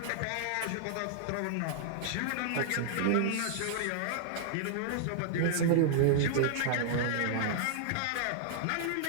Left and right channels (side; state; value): both; different; correlation -0.01